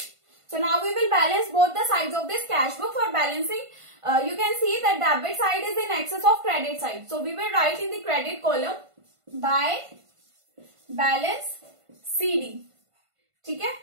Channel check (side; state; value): left; late; 1.5 ms